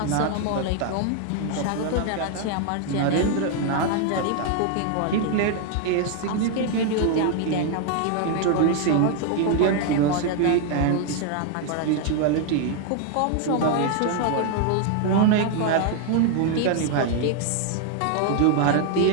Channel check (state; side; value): different; both; correlation 0.00